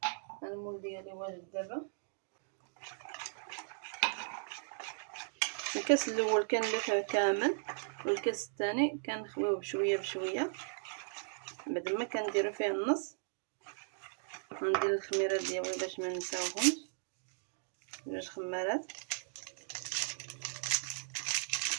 المول ديالي واجد. دابا الكاس الاول كنلفه كامل، والكاس الثاني كنخويه بشويه بشويه. بعد ما كنديرو فيه النص غندير الخميره ديالي باش ما نساوهمش، 2 خمارات.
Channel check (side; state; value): left; silent; digital silence